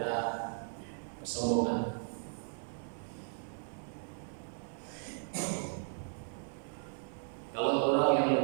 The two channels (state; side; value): silent; left; 54 dB below the other